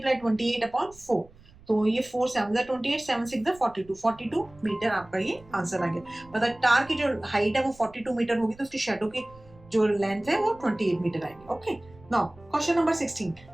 28 अपॉन 4, तो ये 4 7 28 7 6 42 मीटर आपका ये आंसर आ गया। मतलब टार की जो हाइट है वो 42 मीटर होगी, तो उसकी शैडो की जो लेंथ है वो 28 मीटर आएगी। Okay now question number 16,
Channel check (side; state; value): right; noise; rumble, 24 dB below the sound